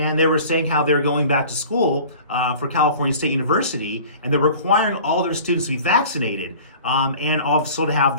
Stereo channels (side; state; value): both; inverted; correlation -0.44